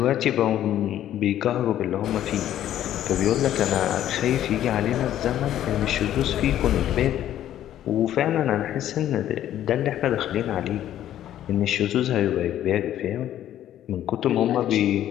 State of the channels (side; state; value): right; quieter; 11.8 dB